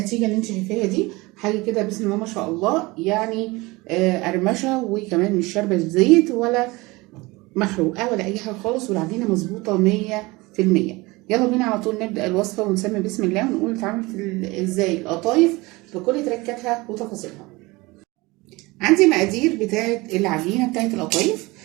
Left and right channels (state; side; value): quieter; left; 22.7 dB